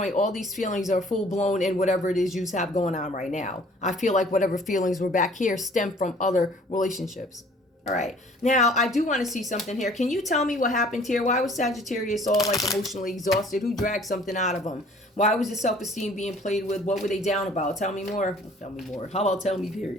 all these feelings are full blown in whatever it is you have going on right now. I feel like whatever feelings were back here stem from other relationships. All right. Now, I do want to see something here. Can you tell me what happened here? Why was Sagittarius all like emotionally exhausted? Who dragged something out of them? Why was the self-esteem being played with? What were they down about? Tell me more. Tell me more. How about tell me,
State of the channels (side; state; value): both; normal; correlation 0.54